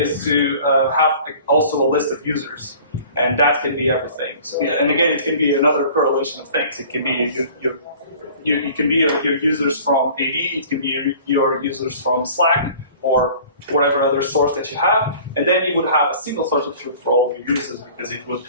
to have also a list of users. And that can be everything. So, yeah, and again, it can be another correlation of things. It can be you can be your users from AD, it can be your users from Slack, or whatever other source that you have, and then you would have a single source of truth for all of your users because it would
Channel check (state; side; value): inverted; both; correlation -0.47